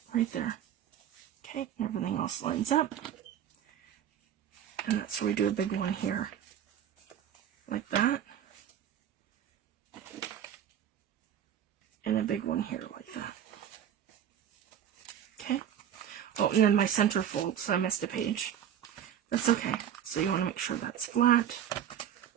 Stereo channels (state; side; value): quieter; left; 9.9 dB